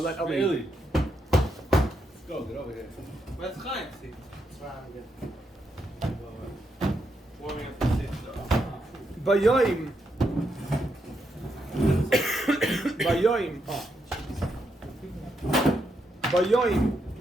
Eli. Really? Go, get over here. Where's Chaim? Warming up the seat. Bayoim. Bayoim. Bayoim.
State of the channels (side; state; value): both; normal; correlation 0.81